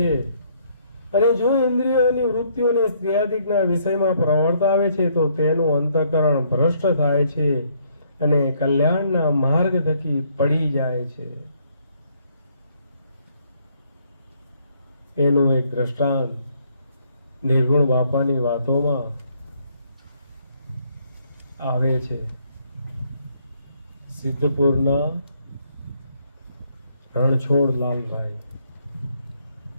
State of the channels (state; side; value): inverted; both; correlation -0.68